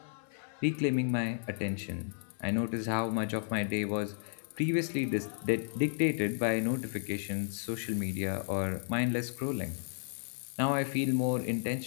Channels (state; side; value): silent; right; 56 dB below the other